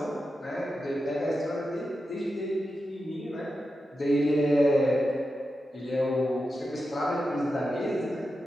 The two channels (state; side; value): normal; both; correlation 0.90